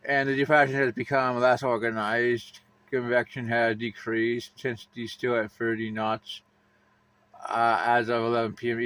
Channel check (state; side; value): identical; both; correlation 1.00